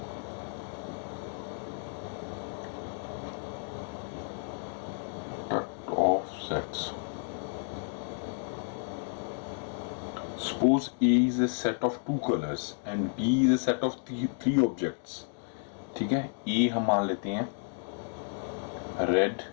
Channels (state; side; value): silent; right; 57 dB below the other